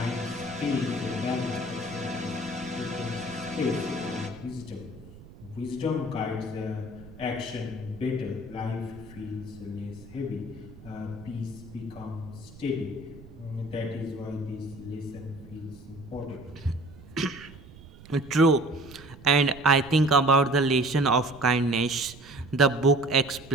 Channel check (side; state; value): right; noise; rumble, 19 dB below the sound